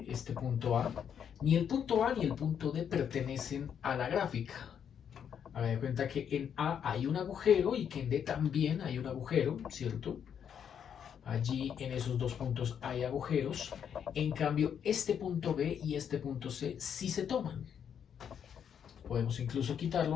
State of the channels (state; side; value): quieter; right; 8.2 dB